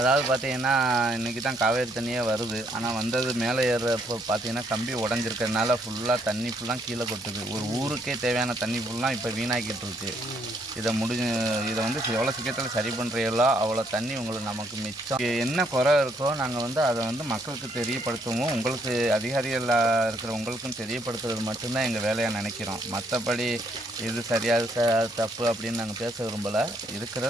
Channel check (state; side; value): normal; both; correlation 0.71